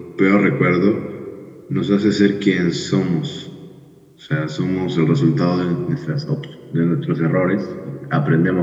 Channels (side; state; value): both; identical; correlation 1.00